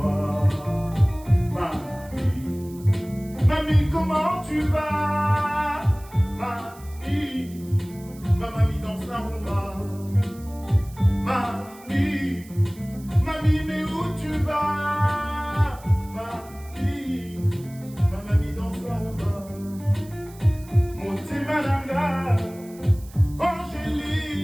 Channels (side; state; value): right; noise; hiss, 23 dB below the sound